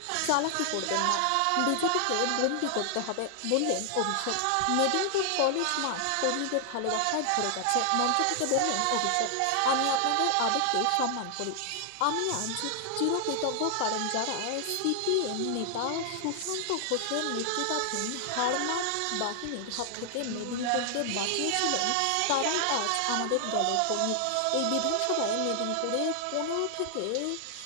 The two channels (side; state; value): both; different; correlation 0.00